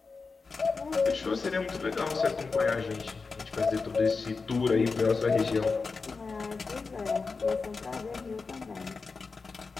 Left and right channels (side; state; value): right; quieter; 4.5 dB